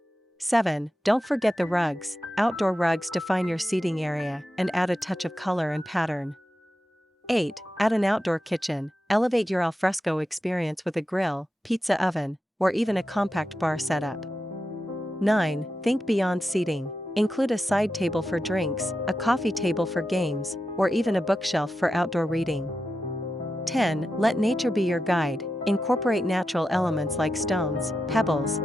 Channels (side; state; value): both; normal; correlation 0.89